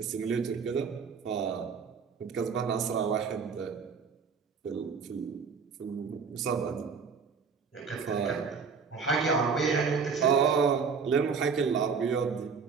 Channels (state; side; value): quieter; left; 5.7 dB